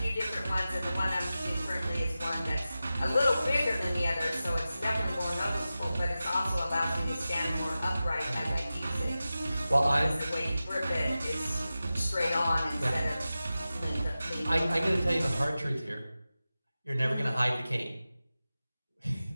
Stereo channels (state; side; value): inverted; both; correlation -0.94